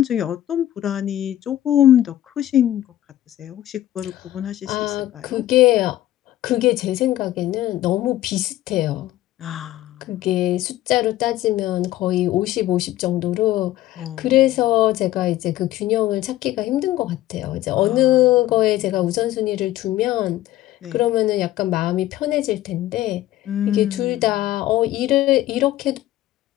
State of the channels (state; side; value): quieter; right; 14.2 dB